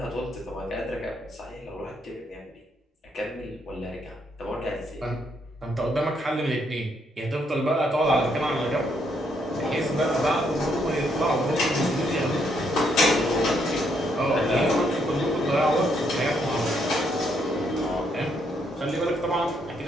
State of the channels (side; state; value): both; normal; correlation 0.74